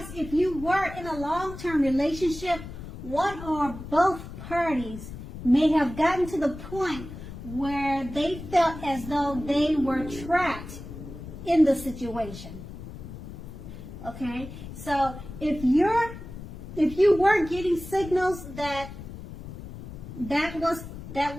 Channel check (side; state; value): left; noise; rumble, 12 dB below the sound